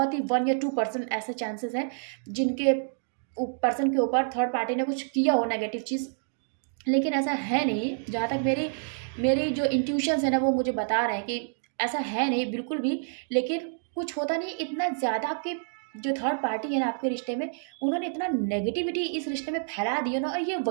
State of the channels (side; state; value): left; silent; digital silence